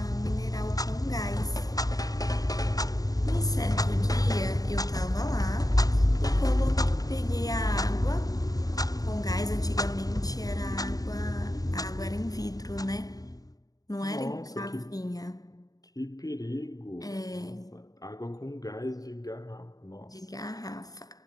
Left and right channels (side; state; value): right; late; 0.18 ms